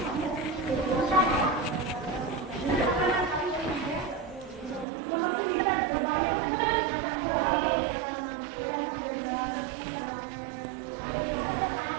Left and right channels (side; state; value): left; drops out; at 4.9 s